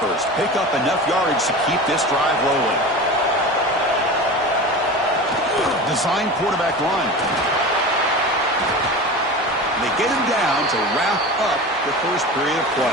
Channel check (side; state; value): both; normal; correlation 0.31